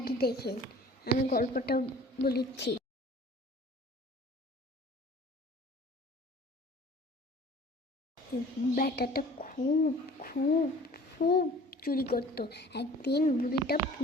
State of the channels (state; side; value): normal; both; correlation 0.47